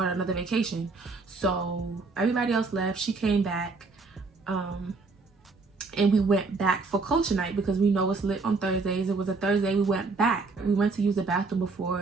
another vacation, so everybody else left. She came back, and we went back for culture night because we know it's lit on Thursdays. It was a Thursday. We went back. We went to use the bathroom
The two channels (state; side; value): quieter; left; 4.0 dB